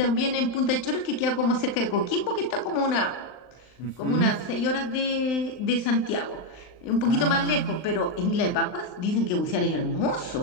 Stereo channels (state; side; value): late; right; 39 ms